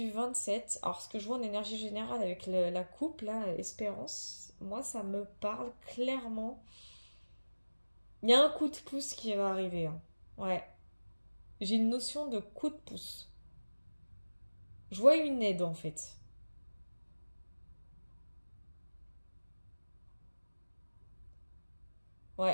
27, alors ce que je vois en énergie générale avec la coupe, là, Espérance, moi ça me parle clairement. Il y a un coup de pouce qui va arriver. Hein. Ouais. J'ai une notion de coup de pouce. Je vois une aide en fait.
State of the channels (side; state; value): both; inverted; correlation -1.00